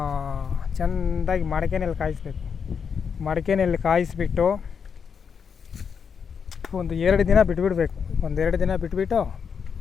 ಚೆಂದಾಗಿ ಮಡಕೆನಲ್ಲಿ ಕಾಯಿಸ್ಬೇಕು. ಮಡಕೆನಲ್ಲಿ ಕಾಯಿಸ್ಬಿಟ್ಟು ಒಂದು 2 ದಿನ ಬಿಟ್ಬಿಡ್ಬೇಕು. 2 ದಿನ ಬಿಟ್ಬಿಟ್ಟು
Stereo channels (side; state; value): right; quieter; 6.6 dB